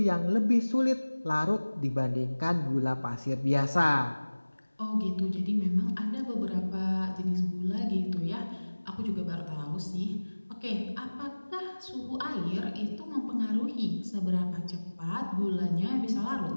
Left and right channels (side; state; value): both; inverted; correlation -1.00